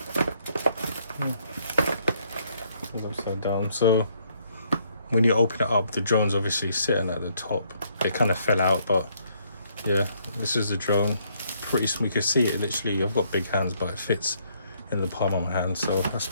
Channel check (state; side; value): inverted; both; correlation -0.69